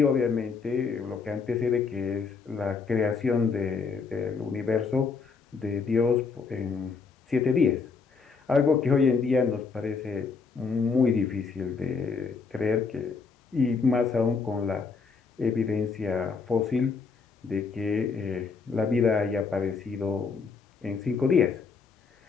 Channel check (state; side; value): quieter; right; 5.0 dB